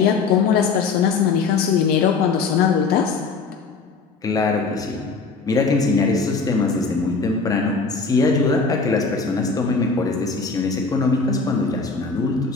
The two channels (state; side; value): quieter; right; 4.6 dB